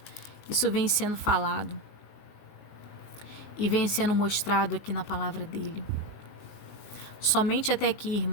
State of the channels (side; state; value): right; late; 19 ms